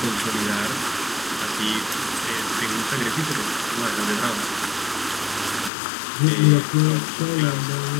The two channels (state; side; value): drops out; right; at 5.7 s